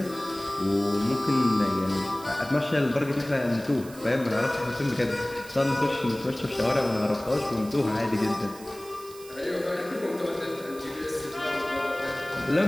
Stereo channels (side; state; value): right; noise; hiss, 19 dB below the sound